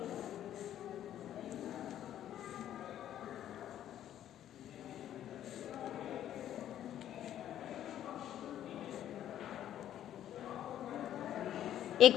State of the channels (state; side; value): quieter; right; 11.3 dB